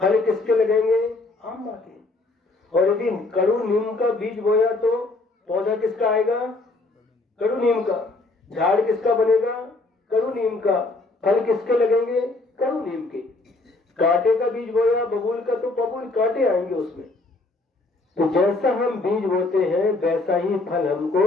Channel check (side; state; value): right; quieter; 3.2 dB